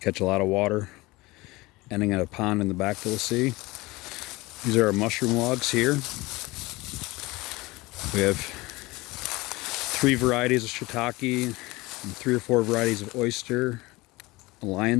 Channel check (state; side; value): quieter; right; 21.6 dB